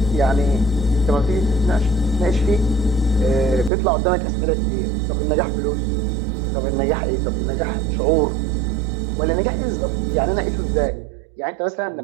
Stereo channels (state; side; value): drops out; left; at 3.7 s